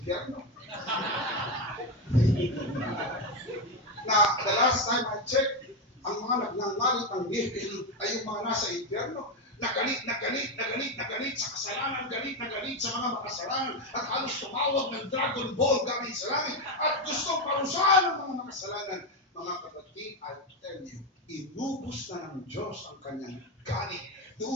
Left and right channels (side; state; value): both; normal; correlation 0.10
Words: Na the last time I checked, ang mga nagngangalit ang ngiti ay yung mga nasa impyerno. Nagalit sa kasalanan, galit sa mga makasalanan, at halos tumawag ng Dragon Ball galing sa langit, at gustong parusahan ng mga makasalanan. Mga kapatid, I tell you, inubos na ng Diyos ang kanyang galit